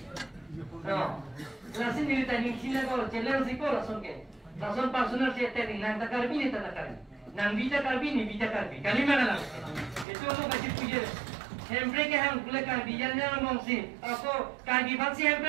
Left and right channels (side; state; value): left; drops out; at 10.1 s